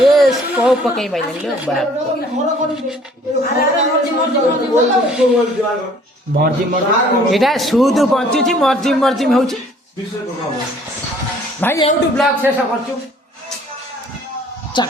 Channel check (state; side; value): normal; both; correlation 0.56